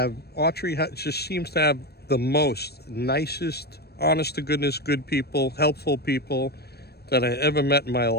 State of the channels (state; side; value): late; right; 0.47 ms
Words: seems to have the most nicest, honest to goodness, good people, helpful people that I ever met in my